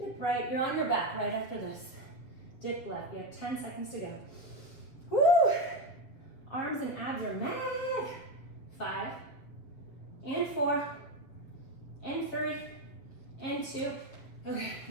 right, you're on your back right after this. Dip left, you have 10 seconds to go. Woo! Arms and abs are mad. 5, and 4, and 3, and 2. Okay,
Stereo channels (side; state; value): right; late; 7.7 ms